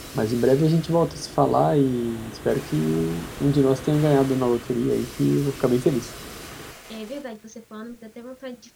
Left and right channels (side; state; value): both; identical; correlation 1.00